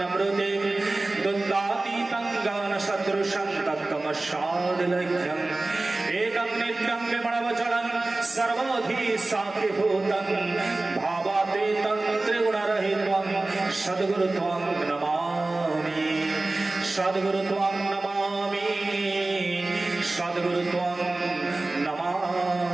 द्वन्द्वातीतं ज्ञानसदृशं तत्त्वमस्यादिलक्ष्यम्। एकं नित्यं विमलवचनं सर्वधी साक्षिभूतं भावातीतं त्रिगुणरहितं सद्गुरुत्वं नमामि। सद्गुरुत्वं नमामि। सद्गुरुत्वं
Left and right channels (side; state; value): left; quieter; 3.0 dB